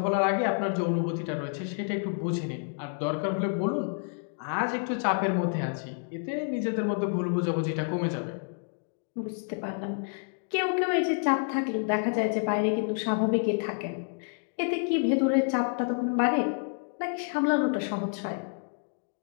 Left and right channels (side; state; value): right; silent; 59 dB below the other